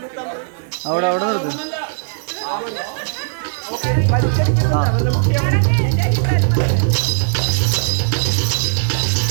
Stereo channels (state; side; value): silent; left; digital silence